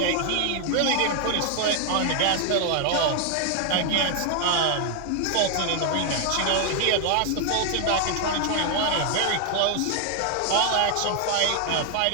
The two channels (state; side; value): different; both; correlation 0.00